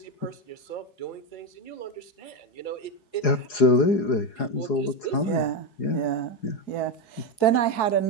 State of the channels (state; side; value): late; right; 4.8 ms